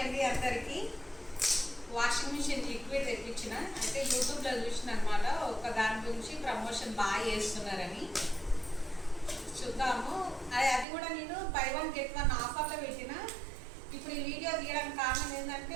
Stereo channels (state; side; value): drops out; left; at 10.9 s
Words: అందరికీ. Washing machine liquid తెప్పించిన అయితే యూట్యూబ్లో చూసిన అనమాట. ఒక దాని గురించి ప్రమోషన్ బాగా చేస్తున్నారని చూద్దాము. అది కూడా నేను బై వన్ గెట్ వన్ ఆఫర్లో పెట్టిన. ఇప్పుడు ఈ వీడియో తీయడానికి కారణం